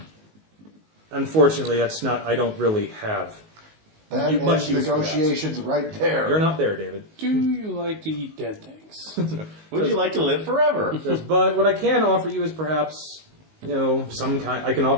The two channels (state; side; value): late; left; 19 ms